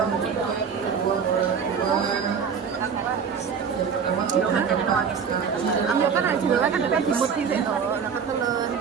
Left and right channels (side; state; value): left; quieter; 6.5 dB